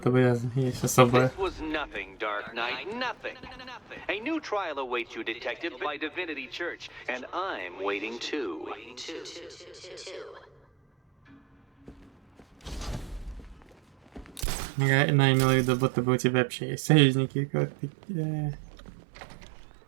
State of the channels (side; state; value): left; drops out; at 14.5 s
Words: бы есть особая. This was nothing, Dark Knight, nothing. A new trial awaits you, Detective, by Divinity Church, and I'm waiting too. Она имела в виду, будто бы у тебя вообще есть союзники, как